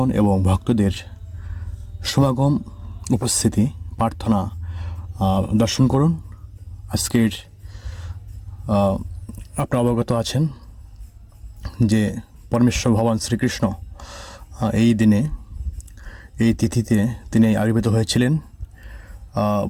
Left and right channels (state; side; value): identical; both; correlation 1.00